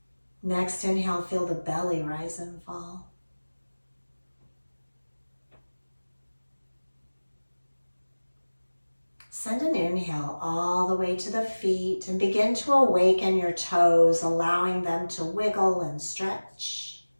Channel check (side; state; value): both; inverted; correlation -1.00